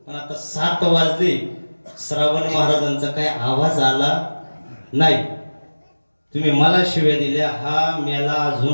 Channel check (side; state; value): both; inverted; correlation -1.00